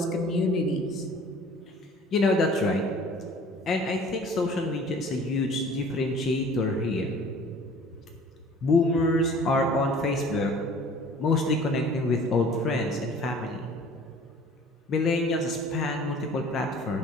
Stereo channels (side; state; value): both; normal; correlation 0.49